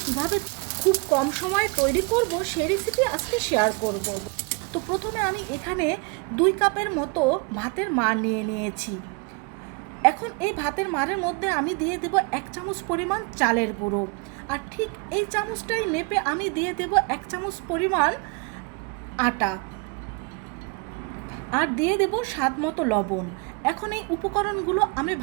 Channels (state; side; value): quieter; left; 30.1 dB